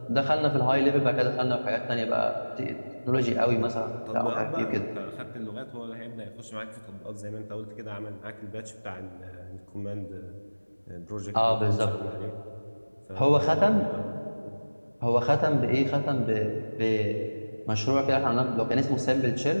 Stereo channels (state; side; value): inverted; both; correlation -1.00